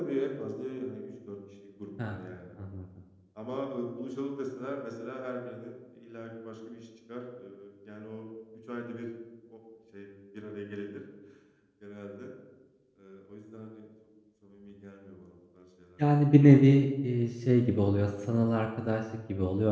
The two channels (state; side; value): identical; both; correlation 1.00